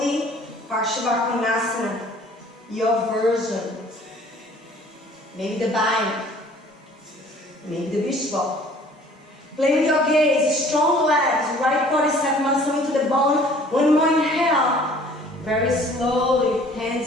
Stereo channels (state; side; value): normal; both; correlation 0.53